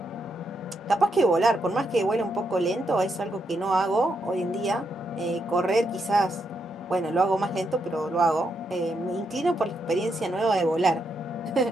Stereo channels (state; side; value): normal; both; correlation 0.80